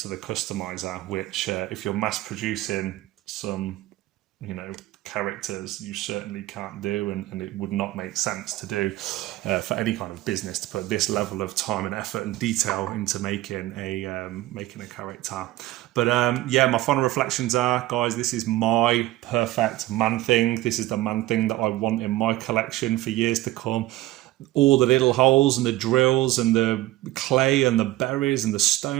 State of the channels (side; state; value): left; quieter; 16.8 dB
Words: to the customizer, which if you're mass producing some, you know, characters, you certainly can't do, and it would not make sense to do for any kind of business to put this level of time and effort and detail into making a character. But yeah, my final reflections are, guys, this is my perfect man thing. This is the man thing that I want in my collection for years to come. All the little holes and the drills and the clay and the berries and the